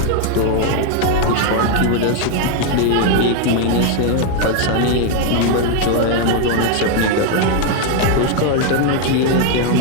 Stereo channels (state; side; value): different; both; correlation 0.01